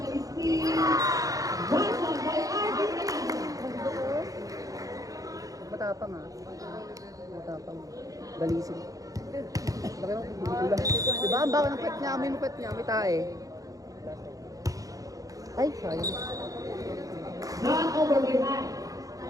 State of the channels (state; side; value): late; left; 0.17 ms